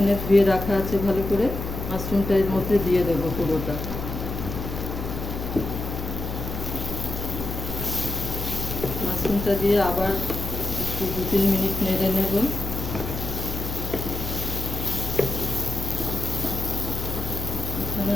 ধুয়ে রাখা আছে ভালো করে, মাশরুমটা এর মধ্যে দিয়ে দেবো পুরোটা। মাশরুমটা দিয়ে আবার একটু 2-3 মিনিট নেড়ে নেব। এখানে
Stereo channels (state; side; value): noise; left; hum, 5 dB below the sound